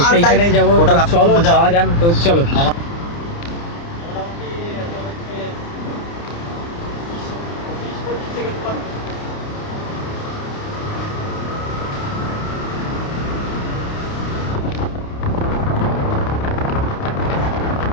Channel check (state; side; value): late; right; 29 ms